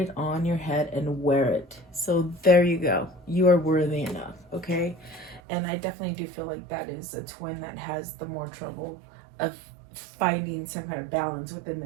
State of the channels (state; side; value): drops out; left; at 5.4 s